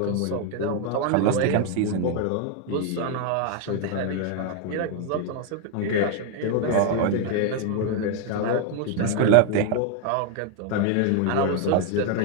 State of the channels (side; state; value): both; different; correlation 0.01